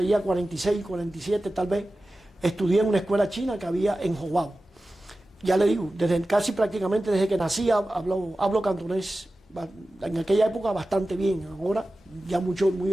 46, 47 tal vez, estudié en una escuela china que había en Jobabo. Ya le digo, casi prácticamente desde que nací hablo cantonés, en aquella época bastante bien, ahora ya muy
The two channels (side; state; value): both; normal; correlation 0.95